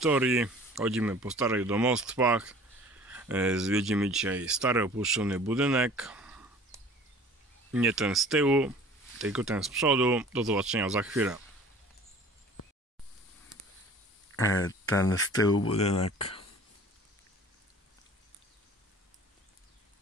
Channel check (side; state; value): both; normal; correlation 0.47